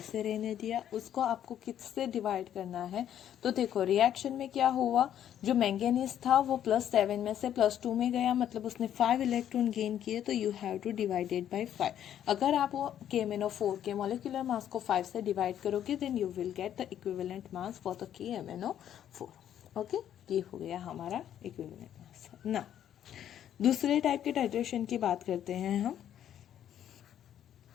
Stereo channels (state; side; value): quieter; right; 10.4 dB